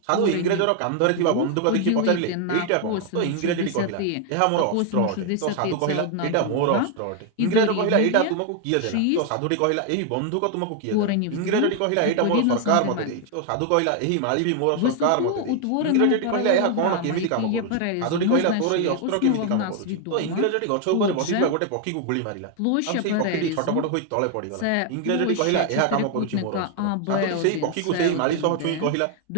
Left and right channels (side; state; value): both; different; correlation 0.00